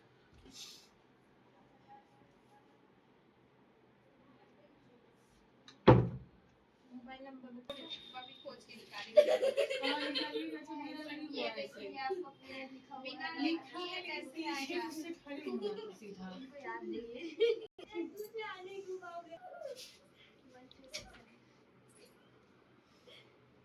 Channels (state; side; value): identical; both; correlation 1.00